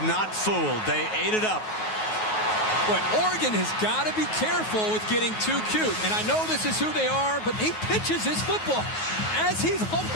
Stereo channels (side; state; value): right; late; 9.4 ms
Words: not fooled. They ate it up. But Oregon has got to be careful with getting too cute. And I know this is who they are, but he pitches his football as he's